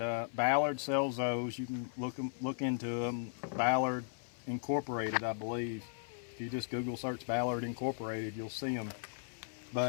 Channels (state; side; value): silent; right; 53 dB below the other